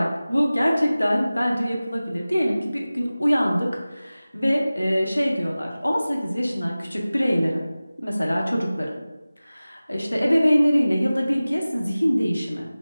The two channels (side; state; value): both; inverted; correlation -0.97